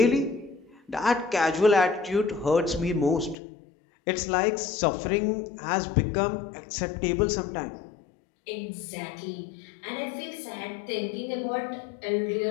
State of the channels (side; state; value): right; drops out; at 3.4 s